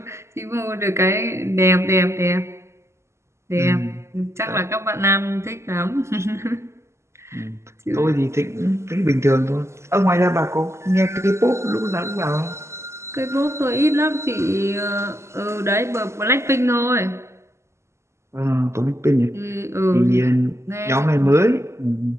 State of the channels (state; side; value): late; left; 0.13 ms